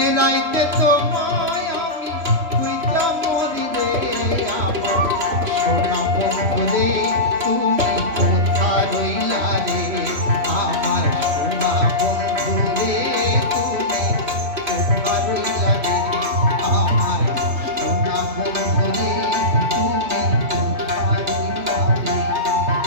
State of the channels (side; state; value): left; late; 3.0 ms